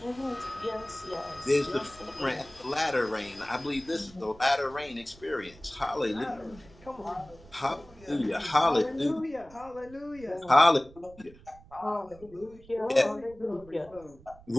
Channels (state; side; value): noise; right; rumble, 23 dB below the sound